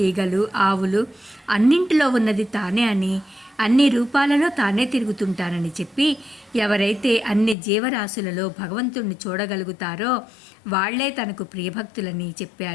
ఈగలు, ఆవులు అన్నింటిలో ఉన్నది తానే అని, అన్ని రూపాలలో తానే తిరుగుతుంటానని చెప్పి, ఎవరైతే అన్ని జీవరాశులలో భగవంతుణ్ణి చూడగలుగుతారో వాళ్లే తనకు ప్రియభక్తులని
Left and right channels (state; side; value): drops out; right; at 7.6 s